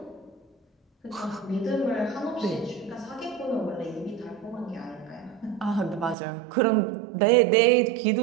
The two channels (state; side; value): drops out; left; at 6.2 s